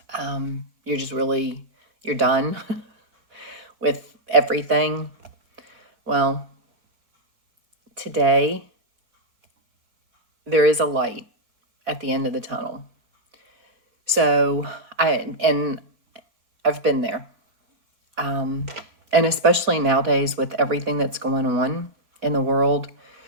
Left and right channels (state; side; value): late; left; 4.5 ms